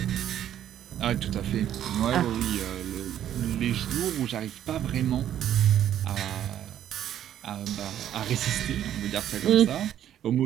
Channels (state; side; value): quieter; left; 10.9 dB